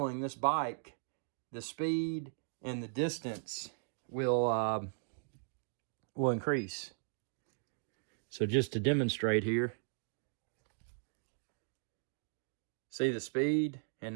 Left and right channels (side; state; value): left; silent; digital silence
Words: this bike, the speed and the distance will increase. So just to demonstrate here, see the speed, and